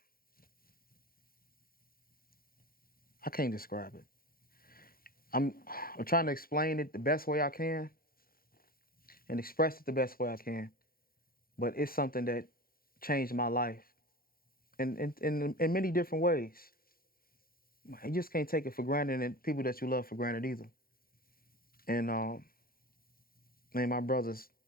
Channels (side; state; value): right; late; 0.43 ms